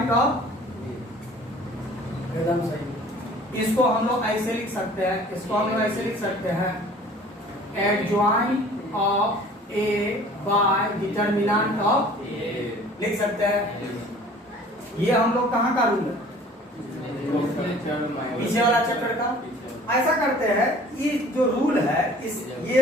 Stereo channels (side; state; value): both; normal; correlation 0.49